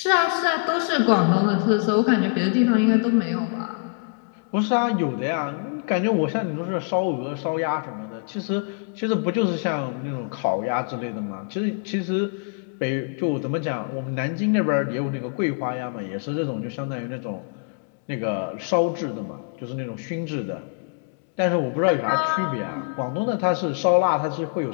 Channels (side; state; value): right; quieter; 38.9 dB